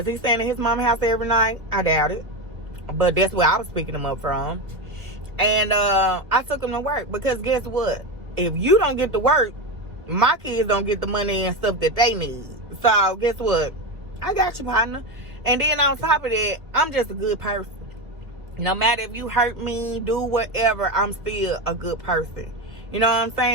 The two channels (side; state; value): left; late; 1.5 ms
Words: he staying at his mama's house every night? I doubt it. But that's where I was picking him up from. And I took him to work because guess what? If you don't get to work, my kids don't get the money and stuff that they need. So, guess what? I got you, partner. And then on top of that, I'm just a good person. No matter if you hurt me, do whatever, I'm still a good person. You know what I'm